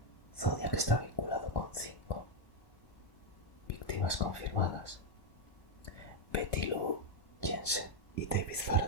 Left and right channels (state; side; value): late; right; 1.1 ms